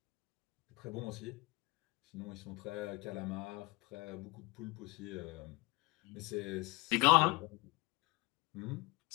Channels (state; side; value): quieter; right; 24.0 dB